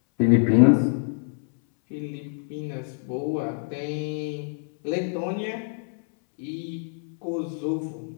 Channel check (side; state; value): right; silent; 61 dB below the other